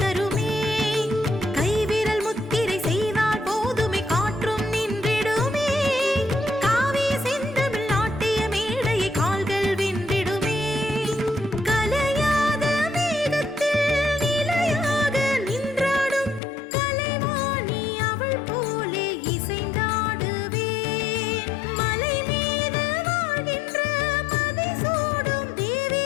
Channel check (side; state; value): right; drops out; at 16.4 s